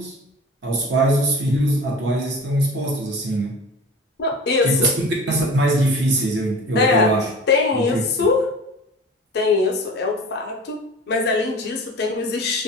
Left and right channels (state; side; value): normal; both; correlation 0.39